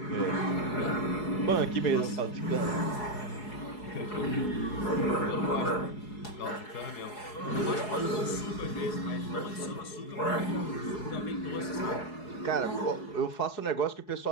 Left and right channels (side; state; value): right; late; 4.7 ms